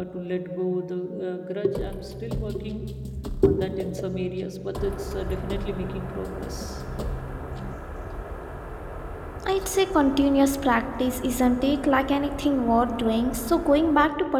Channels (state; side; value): identical; both; correlation 1.00